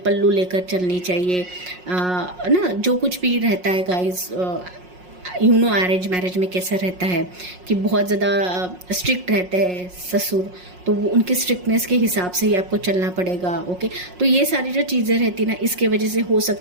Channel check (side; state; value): left; late; 5.5 ms